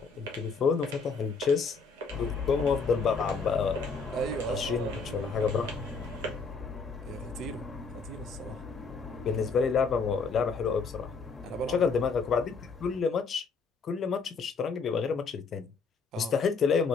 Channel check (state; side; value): quieter; right; 4.8 dB